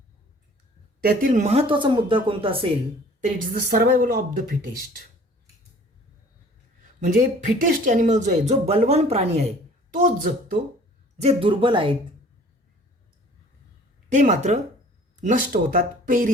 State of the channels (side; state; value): both; normal; correlation 0.51